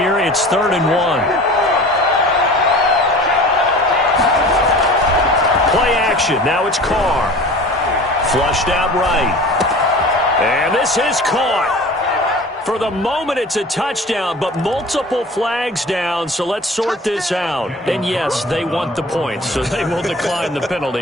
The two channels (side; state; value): both; normal; correlation 0.40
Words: It's 3rd and 1. Play action. Now it's Carr. Flushed out right. And this is caught. For the moment, it's a touchdown, but multiple flags down, so let's sort this out. And yes, they want the points, so they will decline the penalty,